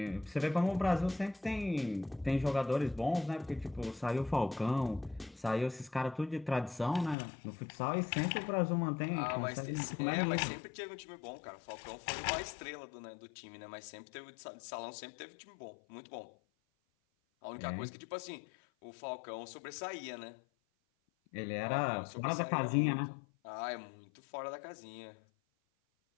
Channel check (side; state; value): right; drops out; at 7.2 s